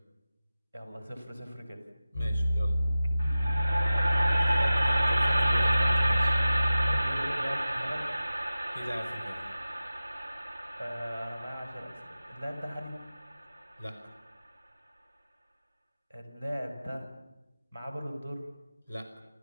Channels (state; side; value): inverted; both; correlation -0.95